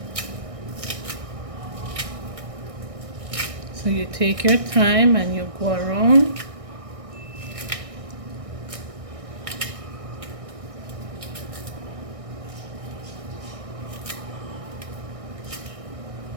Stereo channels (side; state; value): left; late; 1.6 ms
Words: you take your time and you go around.